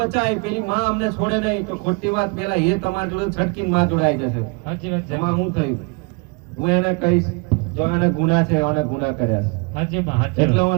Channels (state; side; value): quieter; left; 30.9 dB